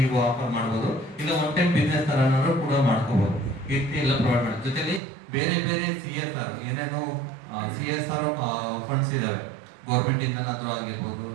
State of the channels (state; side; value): drops out; left; at 5.0 s